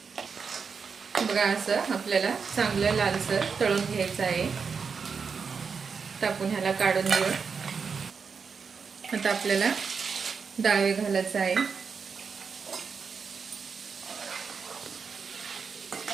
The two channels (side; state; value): left; quieter; 5.7 dB